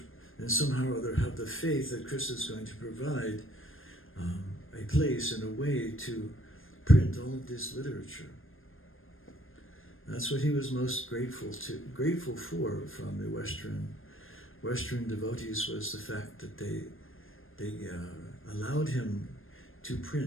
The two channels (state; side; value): late; right; 0.59 ms